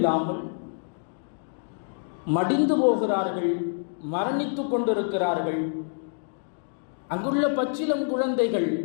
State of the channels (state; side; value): silent; right; digital silence